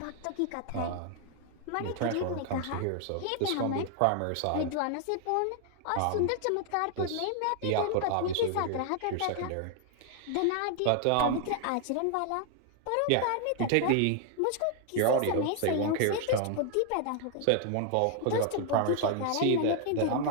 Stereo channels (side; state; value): both; different; correlation 0.00